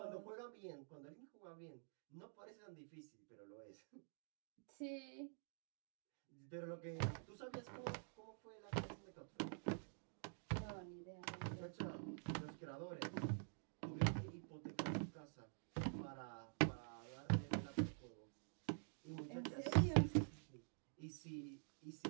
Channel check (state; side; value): silent; left; digital silence